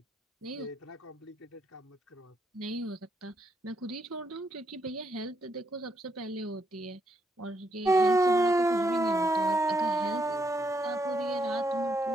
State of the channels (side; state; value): both; normal; correlation 0.76